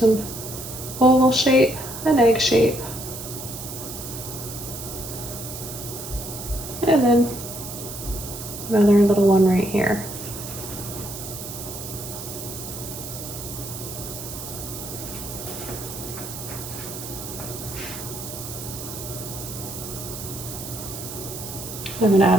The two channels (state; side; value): noise; right; hiss, 9 dB below the sound